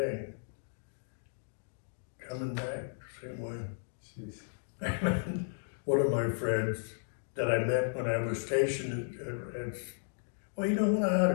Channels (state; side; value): silent; right; digital silence